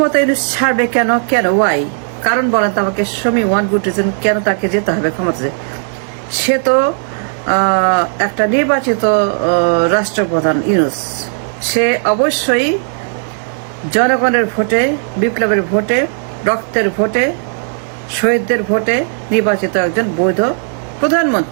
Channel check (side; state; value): left; silent; digital silence